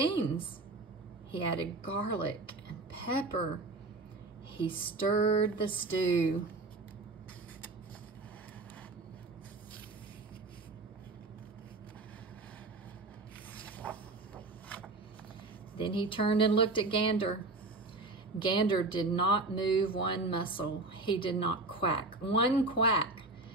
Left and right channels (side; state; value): left; quieter; 3.2 dB